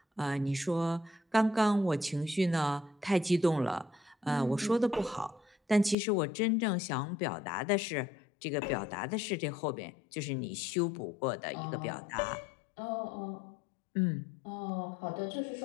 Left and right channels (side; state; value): right; drops out; at 6.0 s